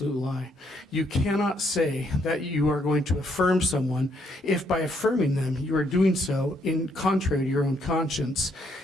lie. You cannot say that you are going to affirm someone if by affirming them you are doing so in contrary to your own conscience.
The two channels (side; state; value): both; normal; correlation 0.72